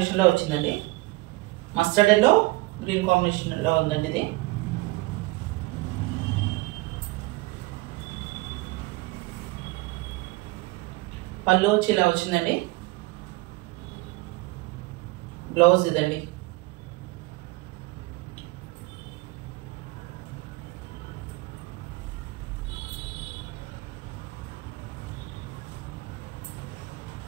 వచ్చిందండి. మస్టర్డ్ ఎల్లో గ్రీన్ కాంబినేషన్లో ఉందండి ఇది. పళ్ళు వచ్చి ఇలా వచ్చిందండి. బ్లౌజ్ ఇదండి.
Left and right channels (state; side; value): quieter; left; 22.5 dB